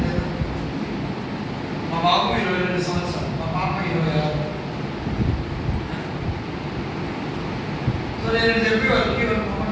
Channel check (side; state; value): both; identical; correlation 1.00